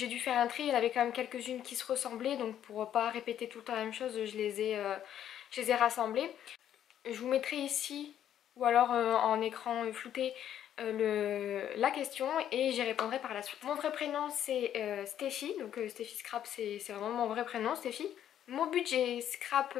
dû faire un tri, il y en avait quand même quelques-unes qui se ressemblaient, donc pour pas répéter tout le temps la même chose, je les ai rassemblées. Je vous mettrai ici, ou alors en écran flouté, la question et j'y répondrai par la suite. Mon vrai prénom c'est Steffi, donc Steffi Scrap c'est vraiment mon vrai prénom, Steffi. Mon budget scrap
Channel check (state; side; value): quieter; right; 10.5 dB